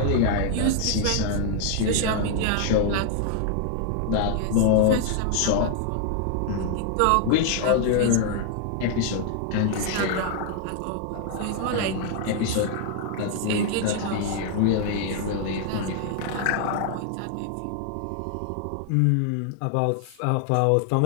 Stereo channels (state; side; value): different; both; correlation 0.00